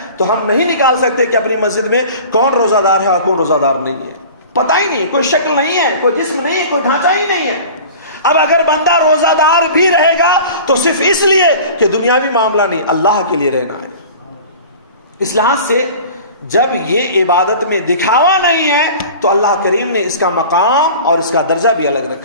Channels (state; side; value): inverted; both; correlation -0.40